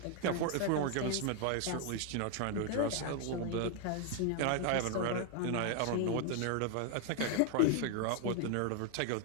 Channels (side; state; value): both; different; correlation 0.00